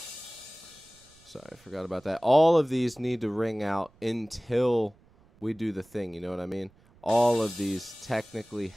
Sorry, I forgot about that. All of these need to ring out until we do the thing, you know what I mean? All of these technically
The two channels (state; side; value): noise; right; rumble, 29 dB below the sound